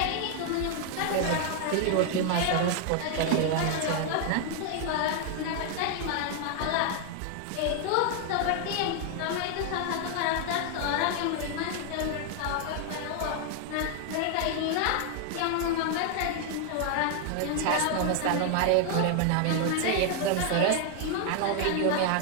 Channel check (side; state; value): both; different; correlation 0.00